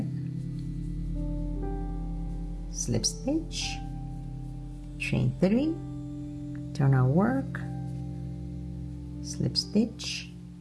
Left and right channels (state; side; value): identical; both; correlation 1.00